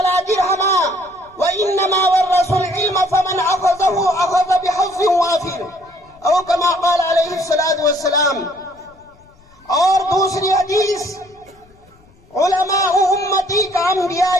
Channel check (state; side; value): noise; left; rumble, 30 dB below the sound